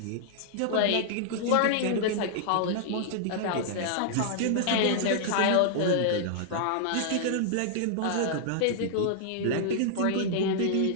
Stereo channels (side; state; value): both; different; correlation -0.01